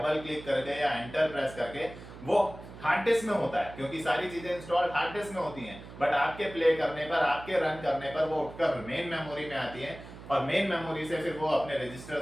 क्लिक करके या एंटर प्रेस करके, वो हार्ड डिस्क में होता है, क्योंकि सारी चीजें इंस्टॉल हार्ड डिस्क में होती हैं। बट आपके प्ले करने पर, आपके रन करने पर वो उठकर मेन मेमोरी में आती है, और मेन मेमोरी से फिर वो अपने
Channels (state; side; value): noise; right; hum, 15 dB below the sound